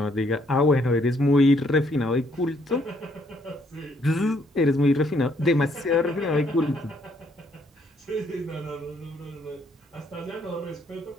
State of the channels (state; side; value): normal; both; correlation 0.69